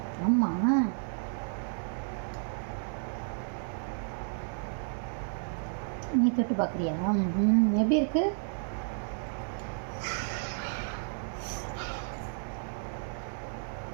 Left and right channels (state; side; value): silent; left; 56 dB below the other